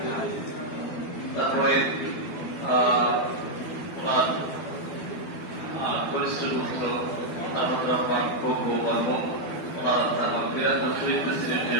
তারপরে ওনার কনিষ্ঠ পুত্র আহমদ রহমান খোকো বর্মন ওনার আত্মার মাগফিরাত ও শহীদ প্রেসিডেন্ট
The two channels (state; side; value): late; right; 12 ms